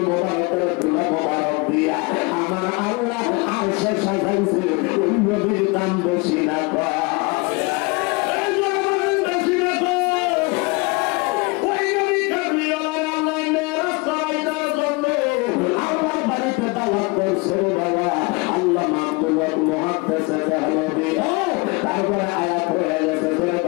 মোবারকের তুলা মোবারক দিয়া আমার আল্লাহ আরশে সাজাইছে। ওই নবীর দাম বেশি না কম? আল্লাহ মাহবুব মুহাদ্দিস দেহলভী তারপরে আয়াত হয়ে গেছে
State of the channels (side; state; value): right; quieter; 27.5 dB